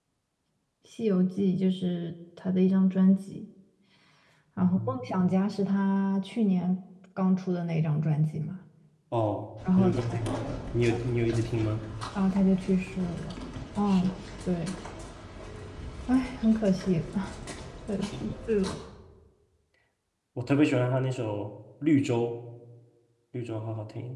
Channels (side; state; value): both; identical; correlation 1.00